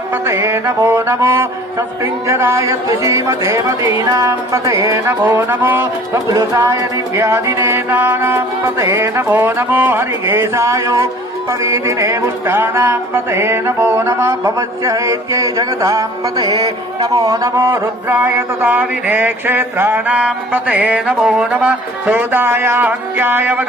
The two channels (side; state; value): both; normal; correlation 0.49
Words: पतये नमो नमो सस्पिञ्जराय द्विषीमते मदीनां पतये नमो नमो बबुलुसाय निव्यादिने नानां पतये नमो नमो हरिकेशाय पवीदिने पुष्टानां पतये नमो नमः भवस्य हैत्यै जगतां पतये नमो नमो रुद्राय तदाविने क्षेत्राणां पतये नमो नमः सोदाय हन्त्याय